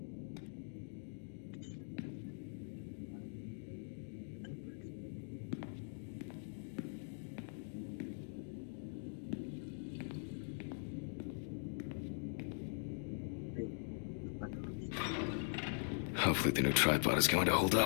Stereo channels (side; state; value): right; silent; digital silence